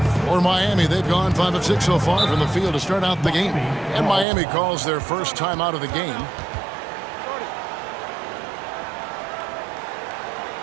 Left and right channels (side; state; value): left; drops out; at 4.2 s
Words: For Miami, they've gone 5 of 6 so far from the field to start out the game. And Miami calls their first time out of the game.